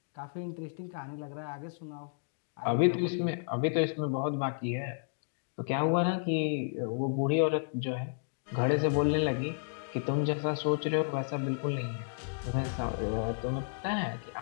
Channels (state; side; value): silent; right; digital silence